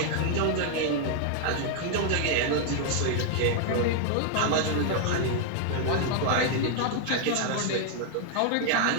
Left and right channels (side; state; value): both; different; correlation 0.00